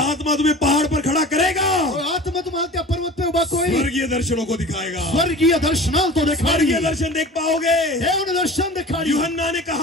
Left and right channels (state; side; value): normal; both; correlation 0.38